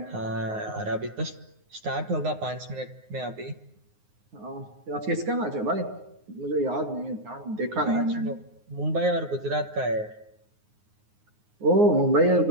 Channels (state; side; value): late; left; 9.6 ms